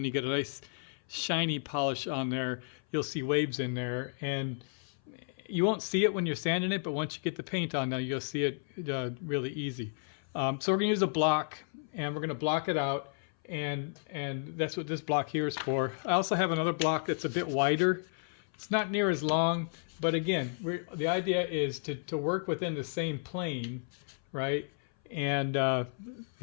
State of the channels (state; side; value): silent; right; 56 dB below the other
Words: you get a nice shiny polish on there, you'll see waves in there, and you won't see it when you're sanding it, but once you get the paint on there, you'll see it really easy. So we're going to use a block, and we're going to block it out, and that's what this block here is for. I also have another block that's a bit wider. It's not near as long, but again, the idea is to work within the same plane, right? And